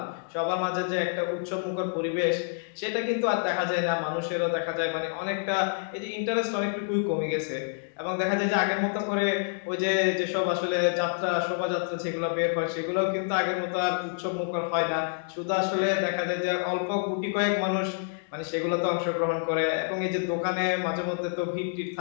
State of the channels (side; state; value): right; silent; digital silence